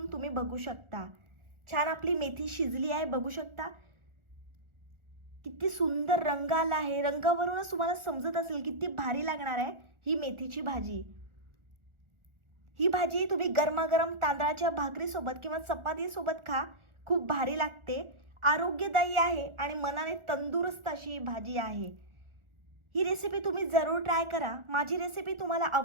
तुम्ही बघू शकता। छान आपली मेथी शिजली आहे, बघू शकता किती सुंदर रंग आला आहे। रंगावरूनच तुम्हाला समजत असेल किती भारी लागणार आहे ही मेथीची भाजी। ही भाजी तुम्ही गरमागरम तांदळाच्या भाकरीसोबत किंवा चपातीसोबत खा, खूप भारी लागते। आरोग्यदायी आहे आणि मनाने तंदुरुस्त अशी ही भाजी आहे। ही रेसिपी तुम्ही जरूर ट्राय करा। माझी रेसिपी तुम्हाला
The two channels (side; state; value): left; late; 1.4 ms